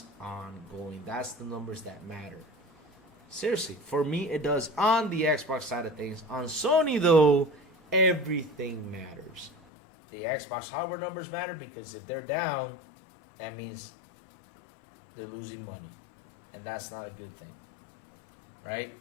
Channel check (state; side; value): drops out; right; at 9.5 s